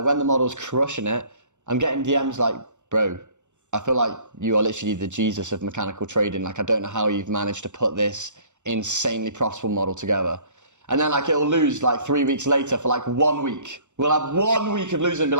when the model's crushing it, I'm getting DMs like, bro, I feel like you are literally the Jesus of mechanical trading. Like, I don't know how you've managed to put this insanely profitable model together. And then like it'll lose like 3 weeks later for like 1 week. We'll have 1 week of losing,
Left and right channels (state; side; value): late; left; 0.84 ms